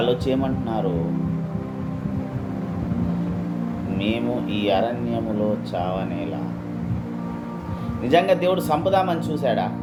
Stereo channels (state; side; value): identical; both; correlation 1.00